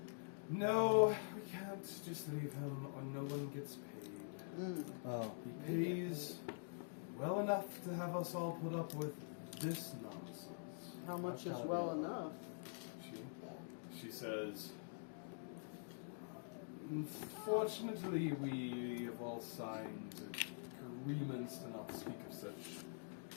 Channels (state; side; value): silent; right; digital silence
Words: "No, we can't just leave him, or no one gets paid. Oh, He pays well enough to have us all put up with this nonsense." How much That's is gotta well be- enough? She says, "Unfortunately, we have all signed agreements to not speak of such